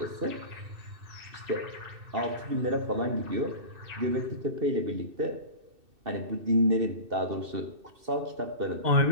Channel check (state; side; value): late; left; 2.6 ms